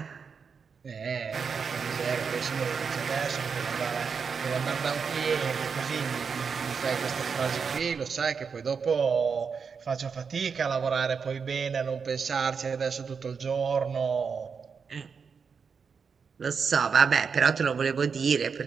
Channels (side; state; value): left; quieter; 5.9 dB